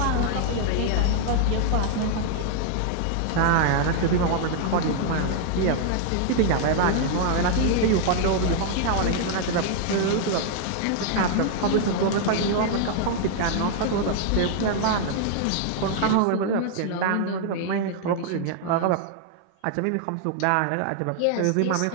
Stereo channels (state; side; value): different; both; correlation 0.00